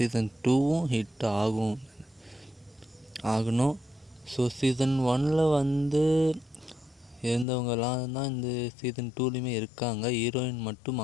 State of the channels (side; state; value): right; drops out; at 7.5 s